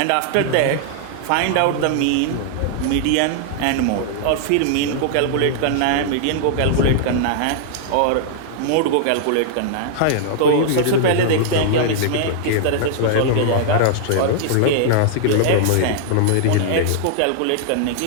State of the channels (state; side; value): different; both; correlation -0.01